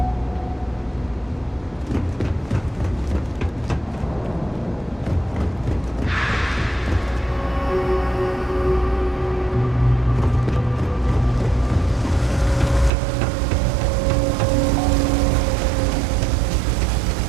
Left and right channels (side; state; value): left; drops out; at 12.9 s